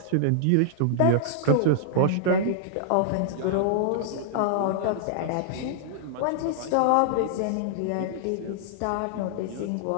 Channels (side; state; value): both; different; correlation -0.01